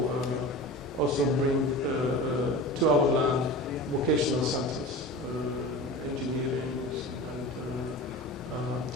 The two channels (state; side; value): normal; both; correlation 0.33